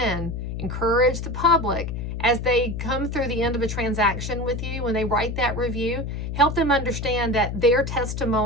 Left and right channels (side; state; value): left; noise; hum, 5 dB below the sound